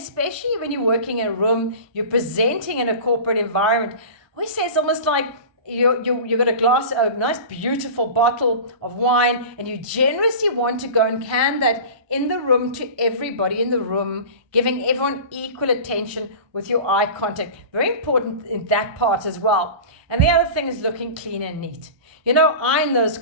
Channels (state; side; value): late; left; 1.2 ms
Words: when you're working in a room, you're presenting in a corporate environment. We say it's almost like you got a nice beautiful bottle of wine, and you generously want to go and can that in the room to everybody in the room, giving everyone equal attention with your eye contact. Very important in that part as well. And the other thing is looking clean and neat. Iron those